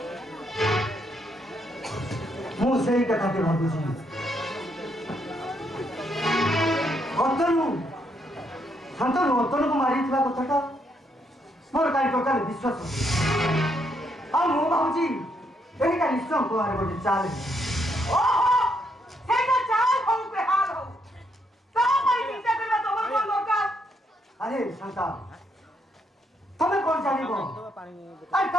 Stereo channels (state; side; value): normal; both; correlation 0.75